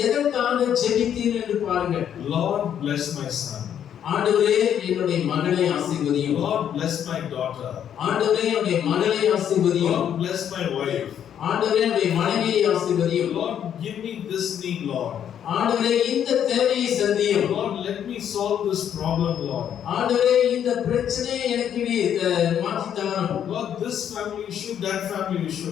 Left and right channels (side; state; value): right; quieter; 9.4 dB